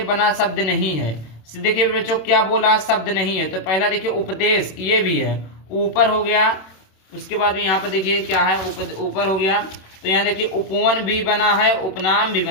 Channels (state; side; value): late; right; 27 ms